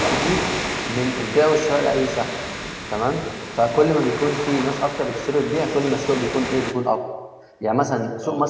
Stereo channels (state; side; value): identical; both; correlation 1.00